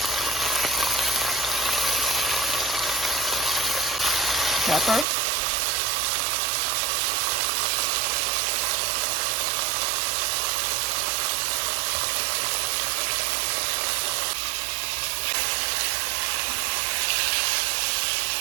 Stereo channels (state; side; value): drops out; left; at 5.1 s